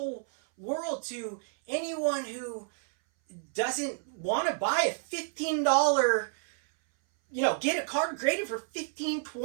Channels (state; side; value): silent; left; 58 dB below the other